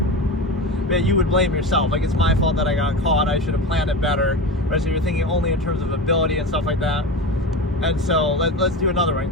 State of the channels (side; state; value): both; normal; correlation 0.26